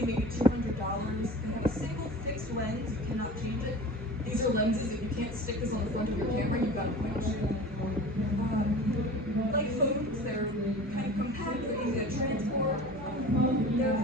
maybe $200. They have a single fixed lens. You cannot change it. These are lenses. If you can't stick this on the front of your camera, you've got to point and shoot. Like phones, they're kind of compact. They're easy to transport. They're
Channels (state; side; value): normal; both; correlation 0.38